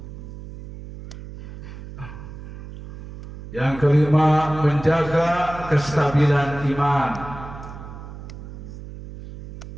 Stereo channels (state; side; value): noise; right; hum, 13 dB below the sound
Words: Yang kelima, menjaga kestabilan iman.